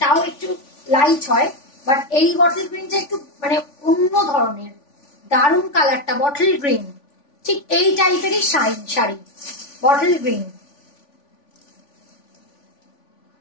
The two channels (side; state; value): right; late; 3.5 ms